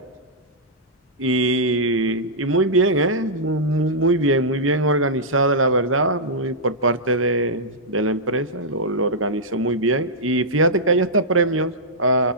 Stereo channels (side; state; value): both; normal; correlation -0.10